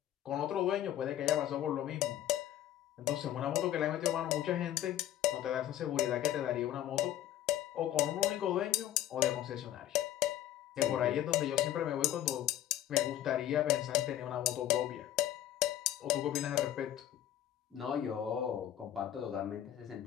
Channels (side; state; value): right; quieter; 12.3 dB